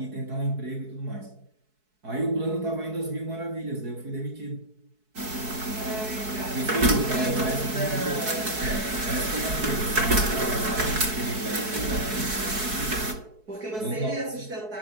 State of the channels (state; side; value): late; left; 4.6 ms